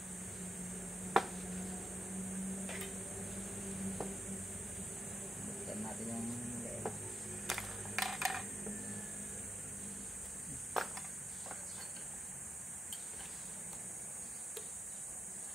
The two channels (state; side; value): normal; both; correlation 0.87